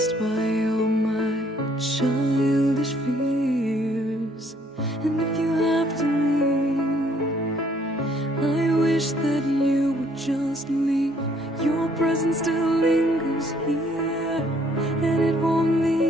by all my childish fears. And if you have to leave, I wish that you would just leave. Your presence still lingers here, and it won't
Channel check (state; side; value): normal; both; correlation 0.64